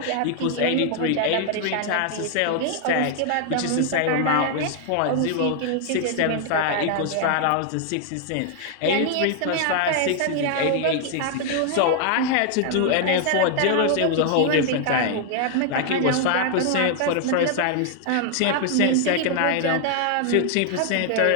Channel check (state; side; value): different; both; correlation 0.00